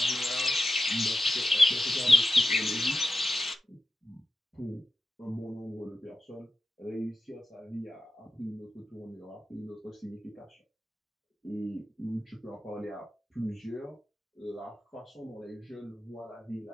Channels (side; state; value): both; normal; correlation 0.92